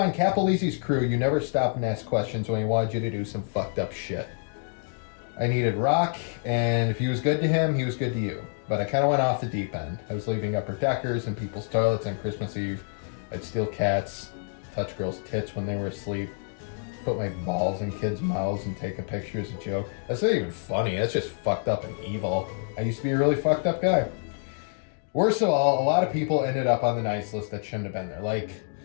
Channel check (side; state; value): right; silent; digital silence